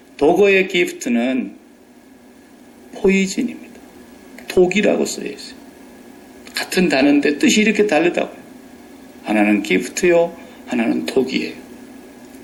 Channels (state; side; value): identical; both; correlation 1.00